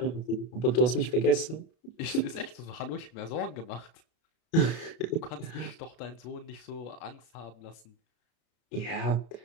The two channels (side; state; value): right; late; 32 ms